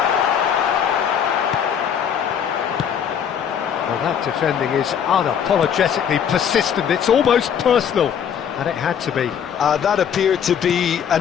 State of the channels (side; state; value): right; quieter; 8.2 dB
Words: Well, that defending is unapologetically persistent. It's almost personal. And it had to be. That appeared to be